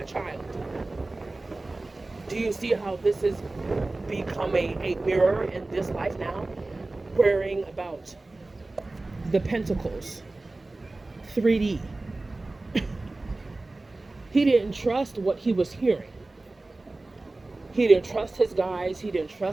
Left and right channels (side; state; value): left; quieter; 3.1 dB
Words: child. Do you see how this has become a mirror in this life now? Worrying about the pentacles, 3D. He didn't trust what he was hearing. He didn't trust his guides. He didn't